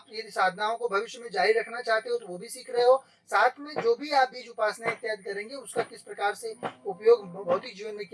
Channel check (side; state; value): both; identical; correlation 1.00